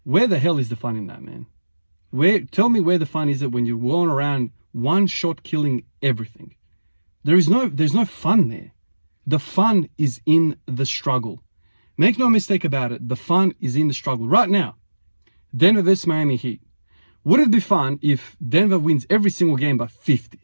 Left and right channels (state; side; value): inverted; both; correlation -1.00